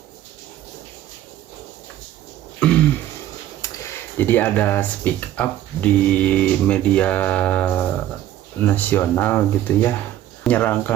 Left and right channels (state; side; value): quieter; left; 12.7 dB